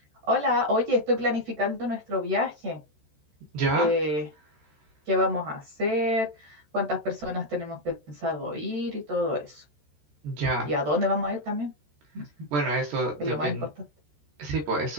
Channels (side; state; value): left; late; 14 ms